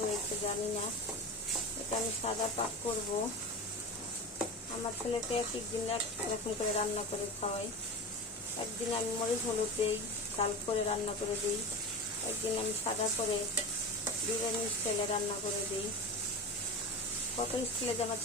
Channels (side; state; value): both; normal; correlation 0.27